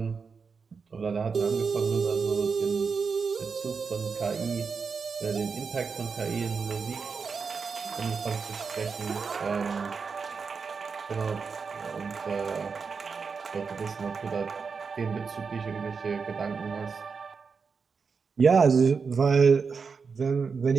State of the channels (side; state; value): left; quieter; 5.3 dB